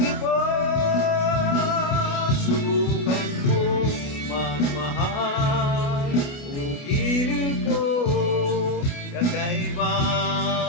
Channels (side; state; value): right; late; 29 ms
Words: iba. Subukan mo magmahal o giliw ko,